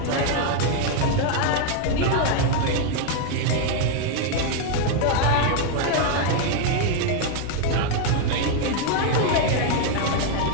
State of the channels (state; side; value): different; both; correlation 0.00